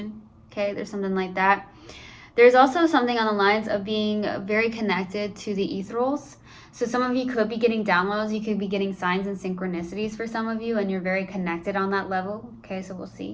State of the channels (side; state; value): both; identical; correlation 1.00